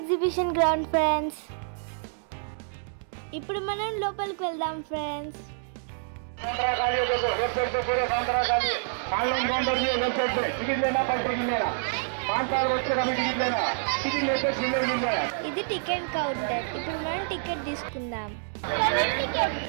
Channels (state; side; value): silent; left; digital silence